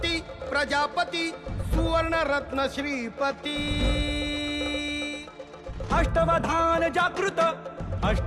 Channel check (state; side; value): identical; both; correlation 1.00